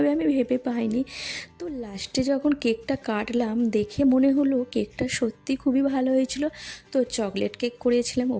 আমি ভেবে পাইনি। তো লাস্টে যখন কেকটা কাটলাম দেখে মনে হলো কেকটা সত্যি খুবই ভালো হয়েছিল। তো চকলেট কেক করেছিলাম,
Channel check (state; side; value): identical; both; correlation 1.00